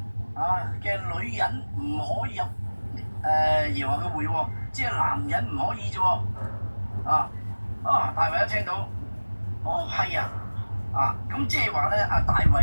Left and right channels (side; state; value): both; inverted; correlation -1.00